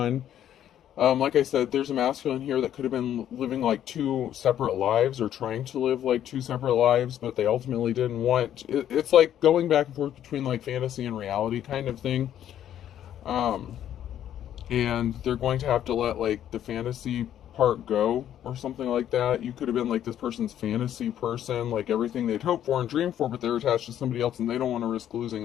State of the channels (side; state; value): right; quieter; 10.8 dB